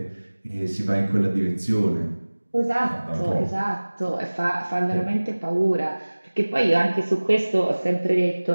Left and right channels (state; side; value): inverted; both; correlation -1.00